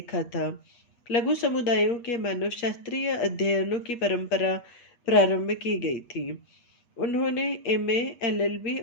था। लघु समुदायों के मानव शास्त्रीय अध्ययनों की परंपरा प्रारंभ की गई थी। उन्होंने एमए, एलएलबी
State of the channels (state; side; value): late; right; 8.3 ms